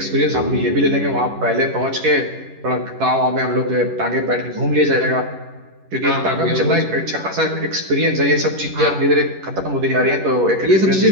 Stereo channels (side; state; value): left; late; 11 ms